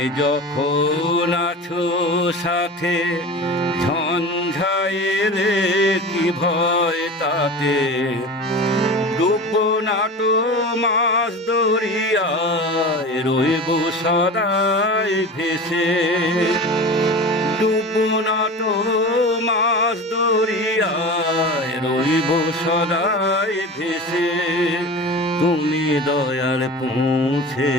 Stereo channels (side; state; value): both; normal; correlation 0.32